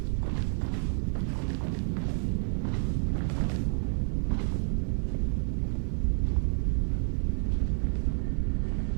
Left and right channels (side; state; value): left; silent; 58 dB below the other